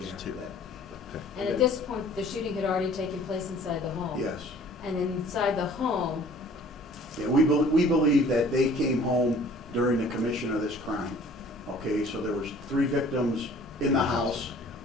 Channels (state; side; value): normal; both; correlation 0.52